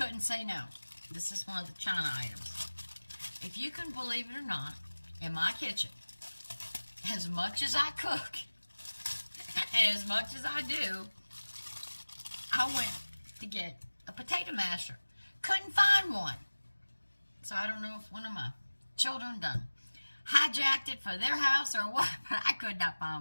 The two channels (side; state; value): both; inverted; correlation -1.00